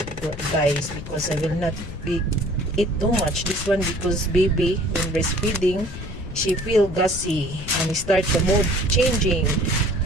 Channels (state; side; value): noise; left; rumble, 11 dB below the sound